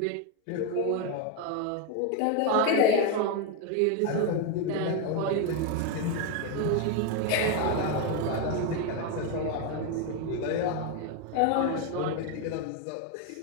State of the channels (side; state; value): both; different; correlation 0.02